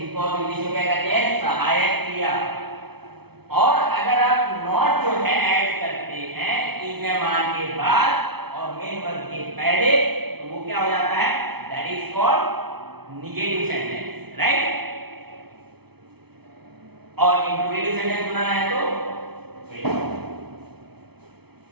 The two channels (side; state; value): left; late; 0.98 ms